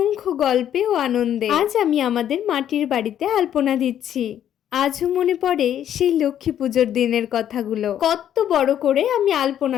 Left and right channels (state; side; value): quieter; right; 10.4 dB